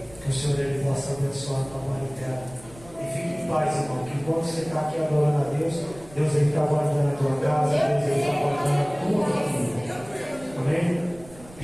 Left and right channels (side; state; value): right; noise; rumble, 21 dB below the sound